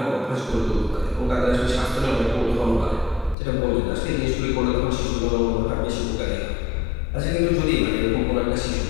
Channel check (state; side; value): drops out; right; at 3.4 s